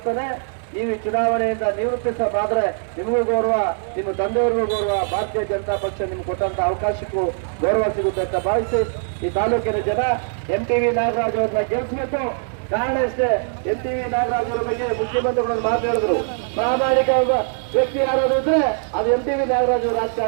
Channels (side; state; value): left; silent; 65 dB below the other